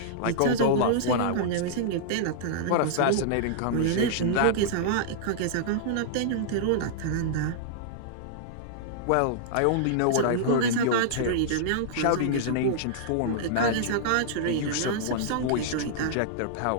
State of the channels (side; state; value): both; different; correlation -0.02